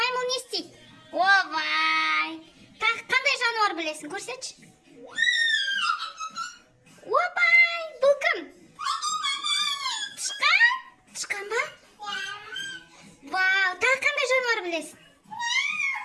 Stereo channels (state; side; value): identical; both; correlation 1.00